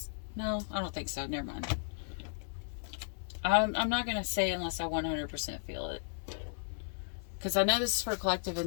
no, I don't think so. Never mind. I'm not going to say unless I 100% feel it. Because I know this is for a collective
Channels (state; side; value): silent; right; digital silence